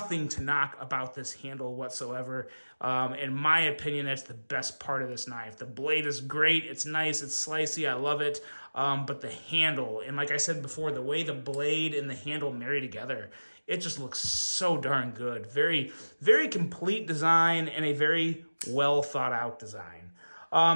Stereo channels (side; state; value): both; inverted; correlation -1.00